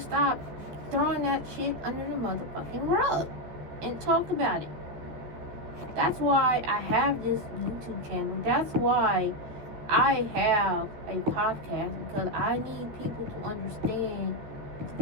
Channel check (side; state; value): left; late; 14 ms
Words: throwing that shit under the motherfucking rug and talk about it. That's why I have this YouTube channel. That's why I have a podcast, because I need people to understand what the